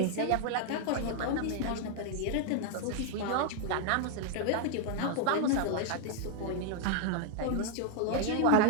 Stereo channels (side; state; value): both; different; correlation 0.00